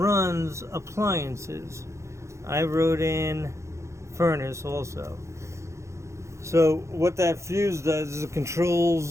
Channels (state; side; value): late; left; 0.14 ms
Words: appliances. I wrote in furnace also. So what that fuse does is it